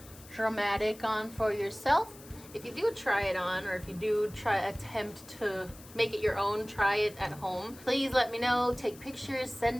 dramatic on for yourself. If you do try it on, or if you do attempt to make it your own, try it at home, please let me know. Take pictures,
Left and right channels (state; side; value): noise; left; hiss, 20 dB below the sound